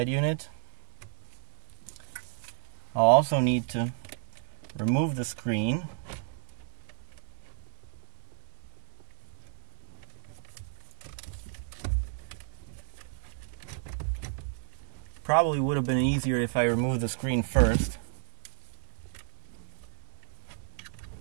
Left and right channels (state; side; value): silent; left; digital silence